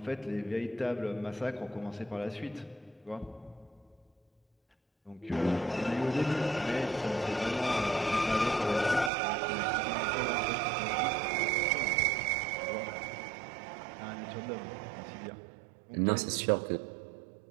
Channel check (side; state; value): left; drops out; at 9.1 s